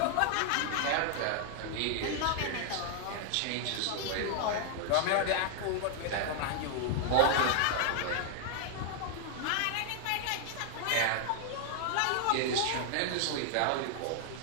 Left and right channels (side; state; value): both; different; correlation 0.00